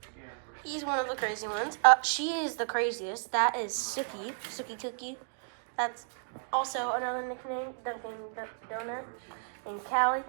He's one of the crazy ones. She is the craziest. That is Sookie Cookie. That's also another nickname, Dunkin' Donut. And Callie,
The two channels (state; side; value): silent; left; 56 dB below the other